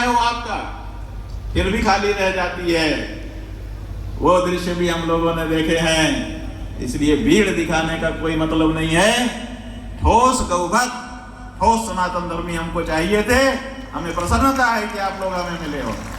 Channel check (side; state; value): both; identical; correlation 1.00